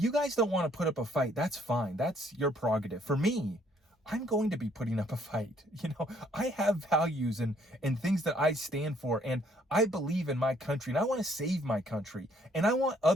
guys don't want to put up a fight, that's fine. That's your prerogative. For me, I'm going to be putting up a fight. I have values and things that I stand for, and I believe in my country, and I want to save my country, and I want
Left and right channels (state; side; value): normal; both; correlation 0.65